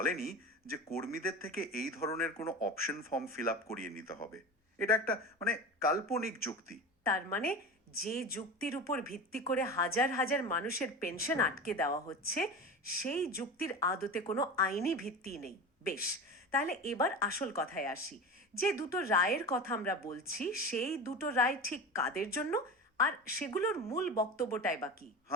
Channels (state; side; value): normal; both; correlation 0.29